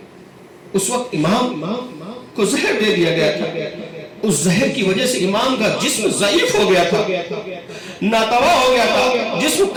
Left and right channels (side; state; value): both; identical; correlation 1.00